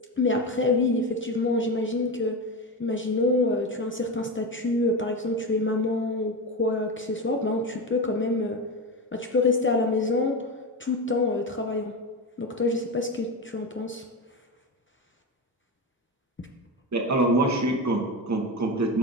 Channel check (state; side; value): normal; both; correlation 0.19